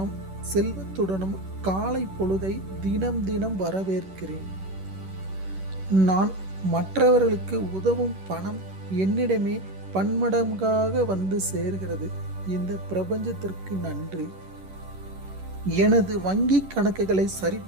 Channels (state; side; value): late; left; 11 ms